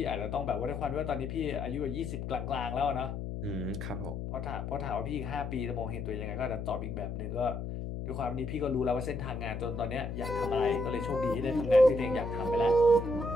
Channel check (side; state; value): left; noise; hum, 5 dB below the sound